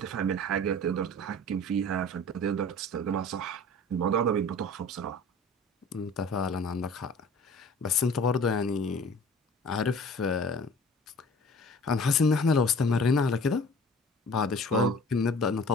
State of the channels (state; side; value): normal; both; correlation 0.45